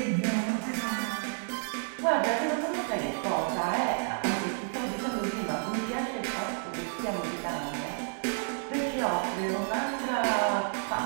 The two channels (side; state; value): left; silent; 58 dB below the other